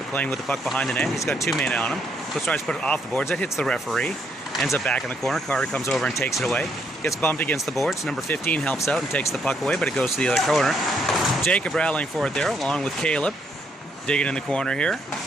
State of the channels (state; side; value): normal; both; correlation 0.73